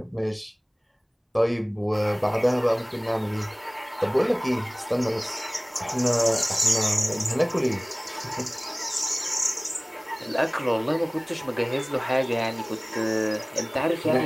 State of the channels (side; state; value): both; identical; correlation 1.00